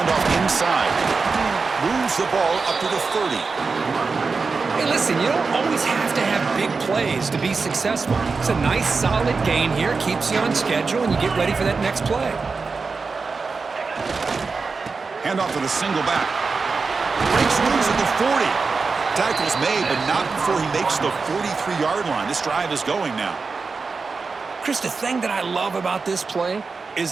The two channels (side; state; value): left; quieter; 4.5 dB